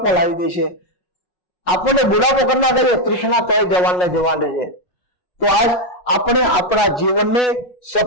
લાવી દે છે, આપણને બુઢાપો કરનાર તૃષ્ણા તો જવાનને જવાન છે. તો આપણે આપણા જીવનને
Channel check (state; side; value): late; right; 5.4 ms